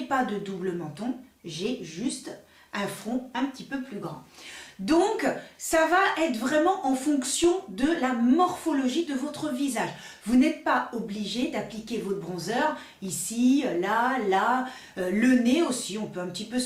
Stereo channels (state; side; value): identical; both; correlation 1.00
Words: pas de double menton, j'ai juste un front un petit peu plus grand. Donc, ça va être vraiment en fonction de la morphologie de votre visage. Vous n'êtes pas obligé d'appliquer votre bronzer ici, là, le nez aussi. On peut un petit peu